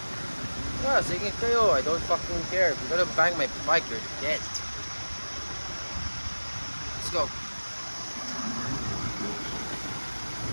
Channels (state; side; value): inverted; both; correlation -1.00